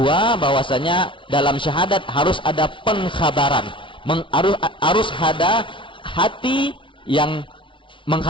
bahwasanya dalam syahadat harus ada pengkhabaran, harus ada hati yang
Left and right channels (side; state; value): right; late; 0.25 ms